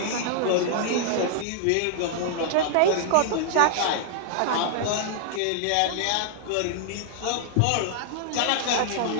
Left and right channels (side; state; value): both; different; correlation -0.01